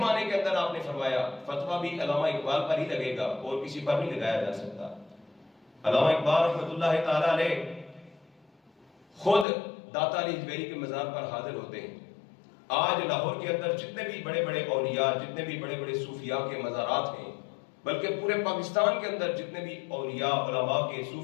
کے اندر آپ نے فرمایا، فتویٰ بھی علامہ اقبال پر ہی لگے گا اور کسی پر نہیں لگایا جا سکتا۔ علامہ اقبال رحمت اللہ تعالیٰ علیہ خود داتا علی حجویری کے مزار پر حاضر ہوتے ہیں۔ آج لاہور کے اندر جتنے بھی بڑے بڑے اولیاء، جتنے بھی بڑے بڑے صوفیاء کے مزارات ہیں، بلکہ پورے پاکستان کے اندر جتنے بھی اولیاء، علماء کے،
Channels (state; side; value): drops out; right; at 9.5 s